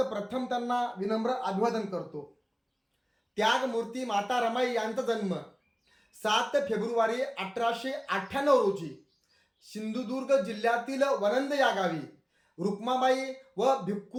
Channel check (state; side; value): identical; both; correlation 1.00